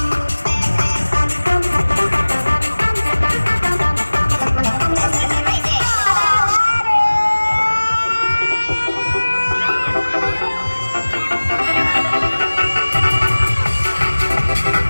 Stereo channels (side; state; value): both; inverted; correlation -1.00